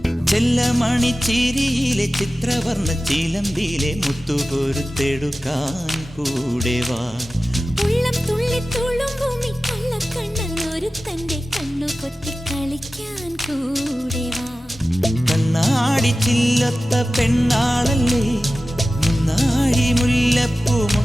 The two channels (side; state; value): both; normal; correlation 0.95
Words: ചെല്ലമണിച്ചിരിയിലെ ചിത്രവർണ്ണ ചിലമ്പിലെ മുത്തുകൊരുത്തെടുക്കാൻ കൂടെ വാ. ഉള്ളം തുള്ളി തുളുമ്പുമി കള്ളക്കണ്ണൻ ഒരുത്തന്റെ കണ്ണു പൊത്തി കളിക്കാൻ കൂടെ വാ. കണ്ണാടി ചില്ലത്ത പെണ്ണാളല്ലേ, മുന്നാഴി മുല്ലപ്പൂ